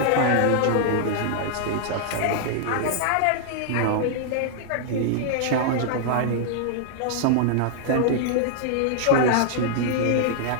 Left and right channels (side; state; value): both; different; correlation -0.01